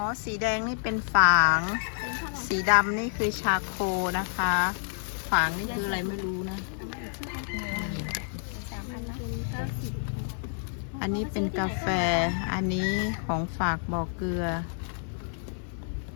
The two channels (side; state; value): right; silent; 55 dB below the other